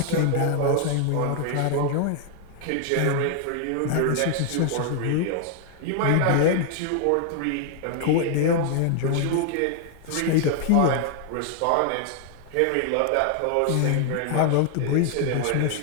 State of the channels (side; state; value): both; different; correlation 0.00